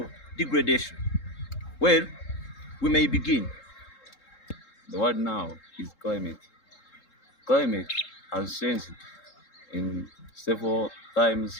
degradation. Well, we may begin. The word now is climate. Climate has changed in several times,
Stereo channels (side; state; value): right; late; 3.7 ms